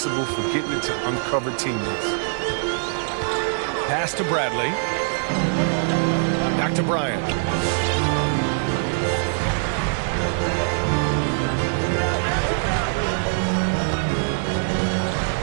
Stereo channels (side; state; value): left; silent; digital silence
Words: for getting it to uncover teammates. Pass to Bradley. Back to Bryant.